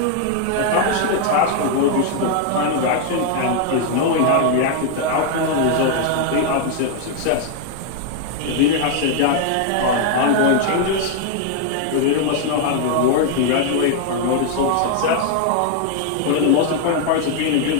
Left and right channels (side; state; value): both; different; correlation 0.00